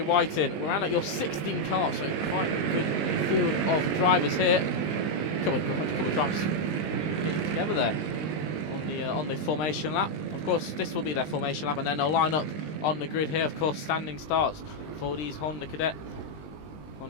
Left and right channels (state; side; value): late; right; 20 ms